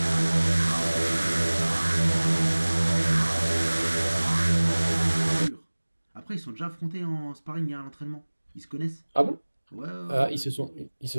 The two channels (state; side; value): inverted; both; correlation -1.00